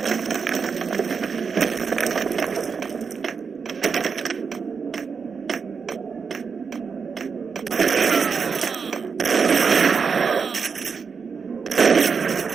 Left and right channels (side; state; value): left; quieter; 5.7 dB